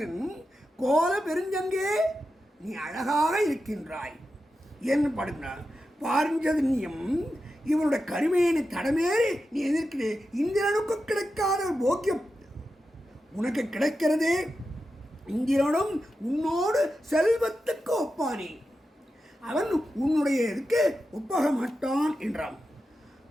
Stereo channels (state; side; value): normal; both; correlation 0.90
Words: கோல பெருஞ்சங்கே நீ அழகாக இருக்கின்றாய் என்று பாடுகிறான். பாரிஞ்சதன்யம் இவனுடைய கருமையினை தடமேறி நீ எதிர்க்கிறே. இந்திரனுக்கு கிடைக்காத போக்கியம் உனக்கு கிடைக்கிறதே. இந்திரனும் உன்னோடு செல்வத்துக்கு ஒப்பானே, அவன் உன்னுடைய இதுக்கு ஒப்பாக மாட்டான் என்றான்.